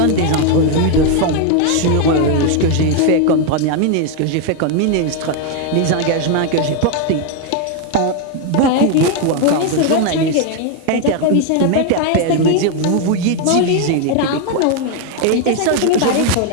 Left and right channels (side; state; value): both; different; correlation 0.01